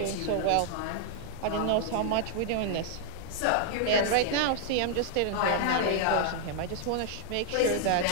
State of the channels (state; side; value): different; both; correlation -0.01